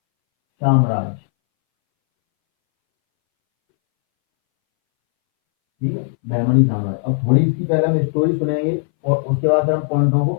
साम्राज्य, ठीक है, बहमनी साम्राज्य। अब थोड़ी इसकी पहले हम स्टोरी सुनेंगे और उसके बाद फिर हम पॉइंटों को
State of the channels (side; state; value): right; silent; 65 dB below the other